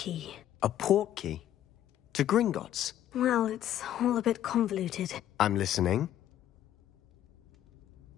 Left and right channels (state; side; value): quieter; right; 11.7 dB